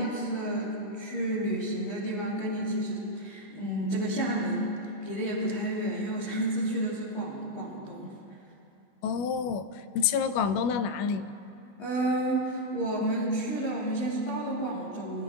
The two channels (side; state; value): right; late; 21 ms